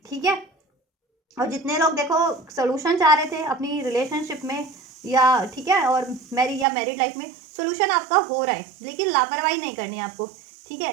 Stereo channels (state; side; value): drops out; left; at 6.7 s